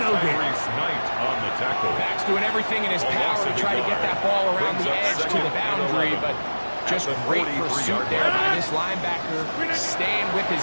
Scott's doing everything in his power to try to get that ball around the edge to the boundary, but just great pursuit there by this linebacker, staying with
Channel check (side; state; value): both; inverted; correlation -1.00